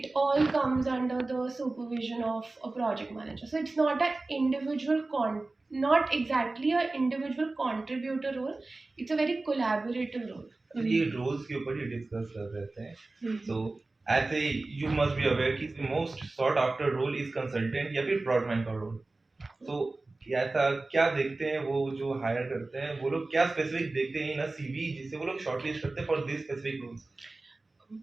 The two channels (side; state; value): left; quieter; 3.2 dB